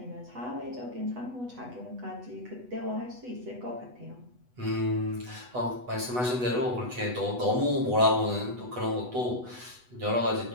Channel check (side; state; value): left; late; 8.1 ms